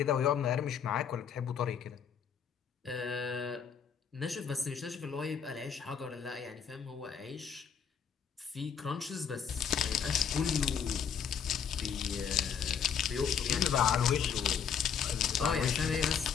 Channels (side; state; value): right; quieter; 7.4 dB